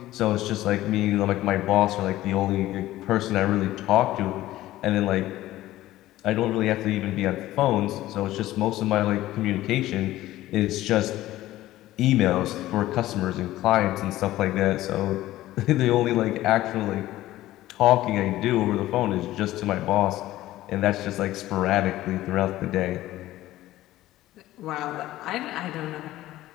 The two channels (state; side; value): quieter; right; 15.5 dB